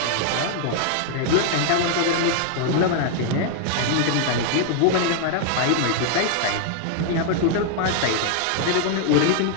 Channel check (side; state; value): both; different; correlation 0.00